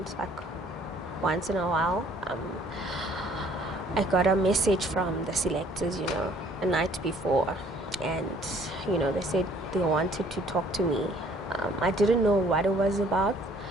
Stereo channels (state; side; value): normal; both; correlation 0.59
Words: like once in a while. I got a message from the selectors, a night before, and they said they wanted to talk to me. I didn't know what it was about,